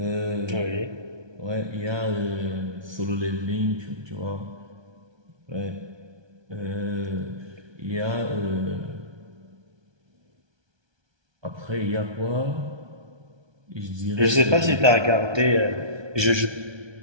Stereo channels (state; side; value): late; left; 1.2 ms